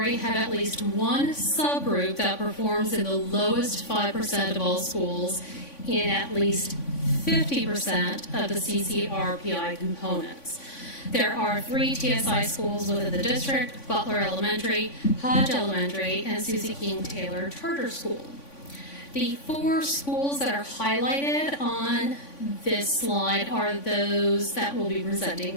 have at least one subgroup that performs in the lowest 5% of all schools in at least 50% of the CCRPI components. There are 3 TSI schools within the district: Butler Elementary, Hodge Elementary, and Susie King Taylor Charter School. The 4 schools that are highlighted on this slide are those that will be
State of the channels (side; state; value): right; late; 3.5 ms